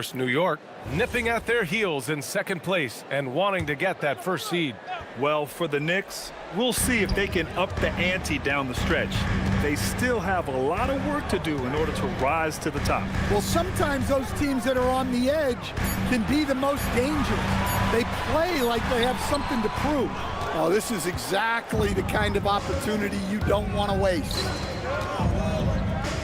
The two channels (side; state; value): both; identical; correlation 1.00